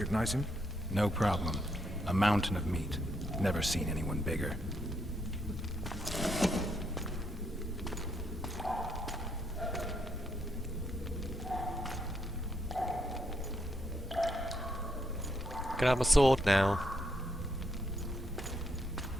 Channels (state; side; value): normal; both; correlation 0.76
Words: him? No problem. A mountain of meat. Never seen anyone bigger. Can I have my sword now?